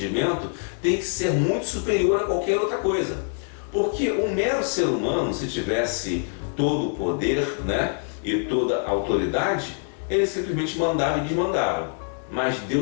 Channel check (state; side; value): silent; right; 62 dB below the other